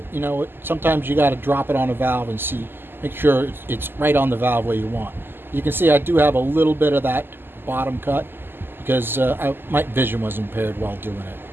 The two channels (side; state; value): left; late; 0.099 ms